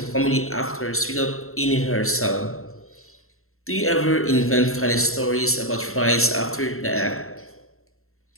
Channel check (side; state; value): right; late; 0.62 ms